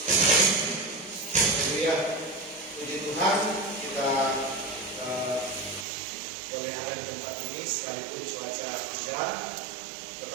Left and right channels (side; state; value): left; drops out; at 5.9 s